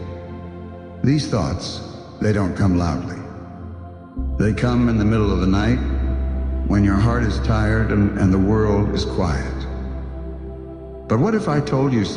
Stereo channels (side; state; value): both; identical; correlation 1.00